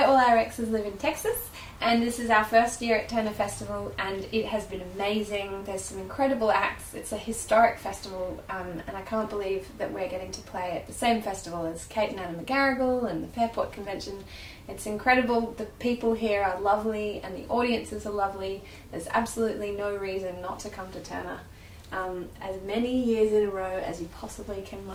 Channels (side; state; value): both; identical; correlation 1.00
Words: all our exes live in Texas, and this is our first year at Tønder Festival, and it has been amazing. There's some incredible acts. It's a historic festival, and I can't believe that we're getting to play at the same festival as Kate and Anna McGarrigle and the Fairport Convention. It's incredible. The people here are lovely, and the audiences are lovely. There's absolutely no reason not to come to Tønder. As many years in a row as you possibly can